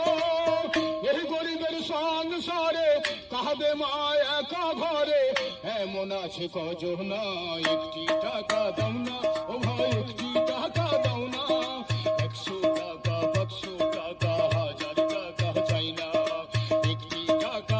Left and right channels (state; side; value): identical; both; correlation 1.00